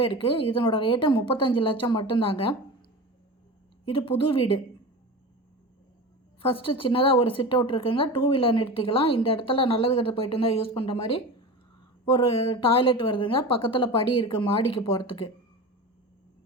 இருக்குது. இதனோட ரேட்டு 35 லட்சம் மட்டும்தாங்க. இது புது வீடு. ஃபஸ்ட்டு சின்னதாக ஒரு சிட் அவுட் இருக்குங்க. 2 வீலர் நிறுத்திக்கலாம். இந்த இடத்துல நல்லது கெட்டது போயிட்டு இருந்தால் யூஸ் பண்ணுற மாதிரி ஒரு டாய்லெட் வருதுங்க. பக்கத்தில் படி இருக்குது மாடிக்கு போகிறதுக்கு.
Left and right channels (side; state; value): both; normal; correlation 0.30